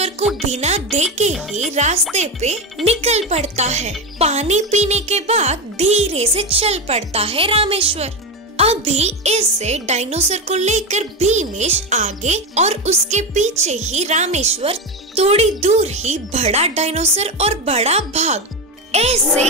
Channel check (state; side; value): normal; both; correlation 0.15